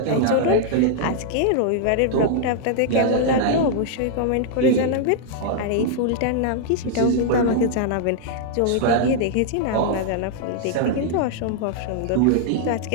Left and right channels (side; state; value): both; different; correlation -0.01